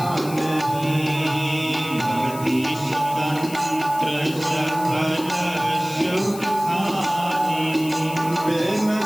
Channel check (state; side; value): noise; left; hiss, 14 dB below the sound